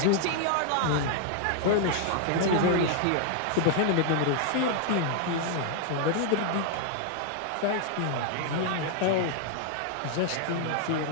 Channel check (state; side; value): different; both; correlation 0.00